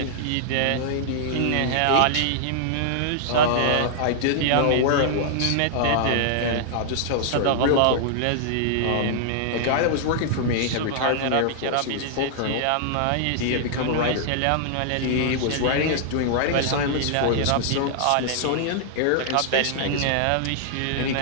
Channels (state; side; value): different; both; correlation -0.01